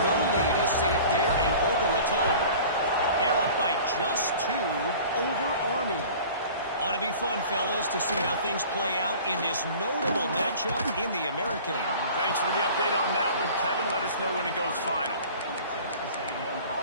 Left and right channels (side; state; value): both; inverted; correlation -0.44